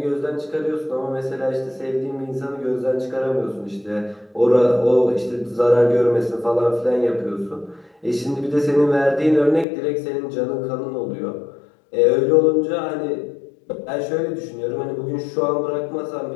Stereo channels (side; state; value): right; drops out; at 9.7 s